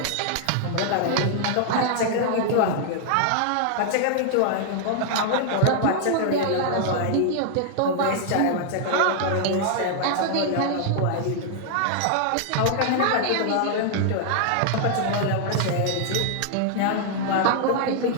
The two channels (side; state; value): both; different; correlation -0.01